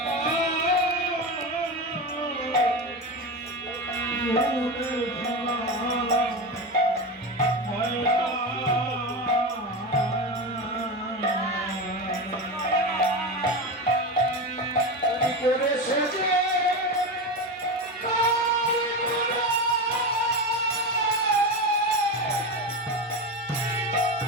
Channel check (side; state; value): both; normal; correlation 0.20